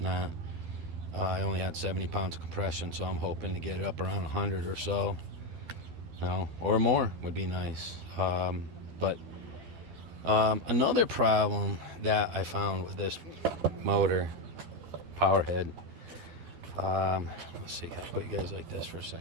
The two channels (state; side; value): late; left; 12 ms